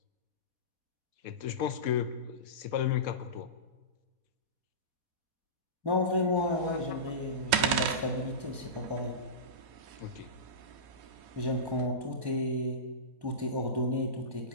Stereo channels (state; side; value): late; left; 4.1 ms